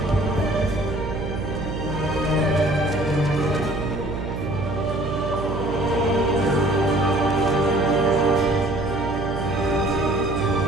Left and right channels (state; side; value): noise; right; hum, 5 dB below the sound